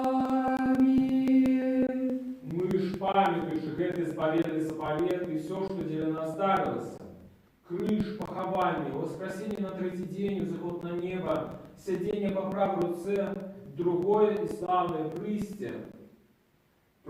Аминь. Мы ж памятующих этой заповедный заповед и все, что для нас дарилось: крыш, похование, воскресение на третий день, заход на небо, сидение по правой руце, другое и славное присте.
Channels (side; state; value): both; identical; correlation 1.00